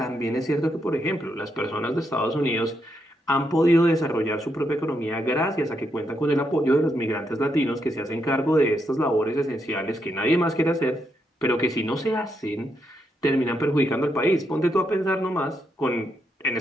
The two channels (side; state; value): both; normal; correlation 0.80